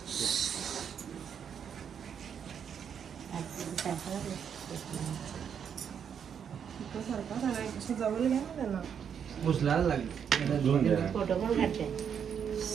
उचलायला लागली फोटो पण काढते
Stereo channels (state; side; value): quieter; left; 7.8 dB